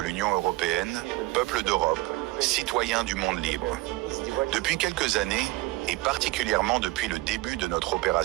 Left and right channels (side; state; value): left; quieter; 19.5 dB